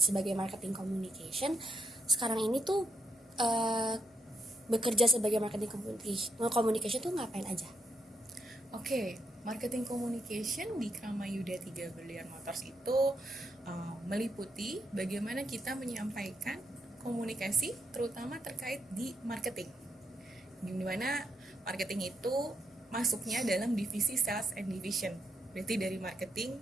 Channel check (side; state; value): both; normal; correlation 0.78